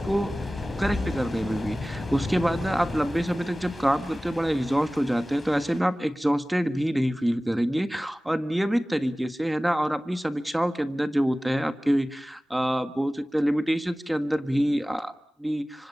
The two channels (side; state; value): both; normal; correlation 0.97